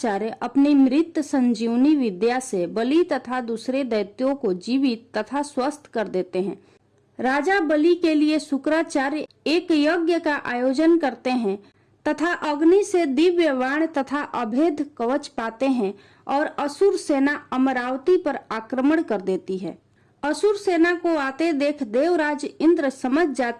अपनी मृत संजीवनी विद्या से बलि तथा दूसरे दैत्यों को जीवित तथा स्वस्थ कर देते हैं। राजा बलि के लिए शुक्राचार्य एक यज्ञ का आयोजन करते हैं तथा अग्नि से दिव्य बाण तथा अभेद कवच पाते हैं और असुर सेना अमरावती पर आक्रमण कर देती है। असुर सेना को आते देख देवराज इंद्र समझ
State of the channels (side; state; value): both; identical; correlation 1.00